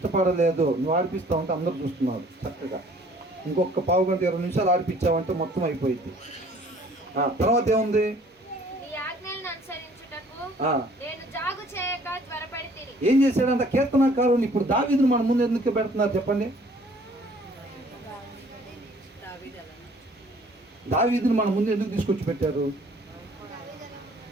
నువ్వు ఆడిపిస్తా ఉంటే అందరూ చూస్తున్నారు చక్కగా. ఇంకొక 15 గంట 20 నిమిషాలు ఆడిపించావంటే మొత్తం అయిపోయింది. తర్వాత ఏముంది? ఏం చేశాడంట కీర్తనకారుని? ఇప్పుడు దావీదును మన ముందు ఎందుకు పెడుతున్నారు చెప్పండి? దావీదును మన ముందు ఎందుకు తీసుకొచ్చి పెట్టారు?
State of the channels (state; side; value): normal; both; correlation 0.56